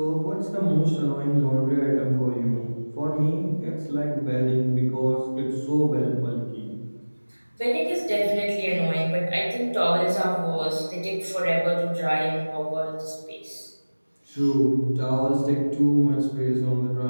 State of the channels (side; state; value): both; inverted; correlation -1.00